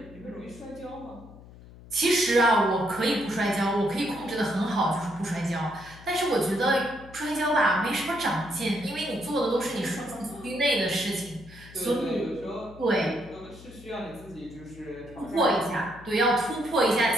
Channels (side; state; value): left; noise; hum, 19 dB below the sound